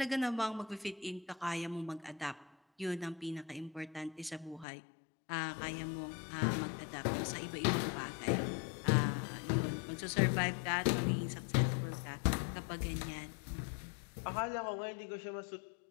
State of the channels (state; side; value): drops out; right; at 4.7 s